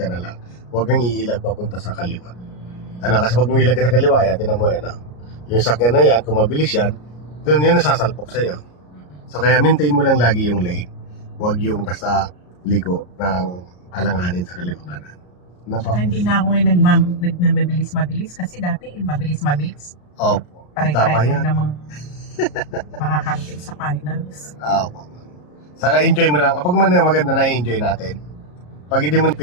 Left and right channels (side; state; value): right; late; 34 ms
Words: na lang. Huwag kang iilag papunta sa kaliwa. Ano, kasi pag umilag ka sa kaliwa, ayan, tingnan mo yan, yung sakyan na yan, kung mabilis yan, doon yun nasasalpok sa'yo. So kaya maintain mo lang lagi yung lane. Huwag yung basta liko ng alanganin sa kaliwa kanan. Napa? Hindi na ako ngayon nagmabilis-mabilis kasi dati mabilis-mabilis. Opo. Tama Pare-pareho yan. namang makakarating sa finals. Opo. Saka enjoy mo lang. Kapag man maganda na enjoy natin. Pag hindi mo